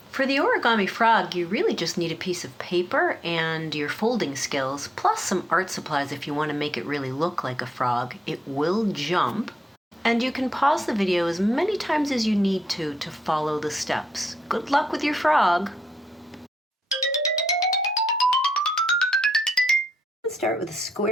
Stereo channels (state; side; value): normal; both; correlation 0.81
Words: For the origami frog, you really just need a piece of paper and your folding skills, plus some art supplies if you want to make it really look like a frog. It will jump. And you can pause the video as many times as you need to follow the steps. Good luck with your frog! Let's start with a